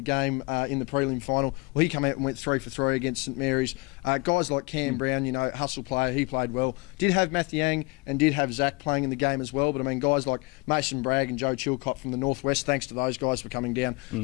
game in the prelim final. Well, he came out and went 3 for 3 against St. Mary's. Guys like Cam Brown, hustle player, he played well. Did have Matthew Yang and did have Zach playing in the game as well, but I mean, guys like Mason Bragg and Joe Chilcott from the Northwest, thanks to those guys for coming down.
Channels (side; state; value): right; quieter; 27.8 dB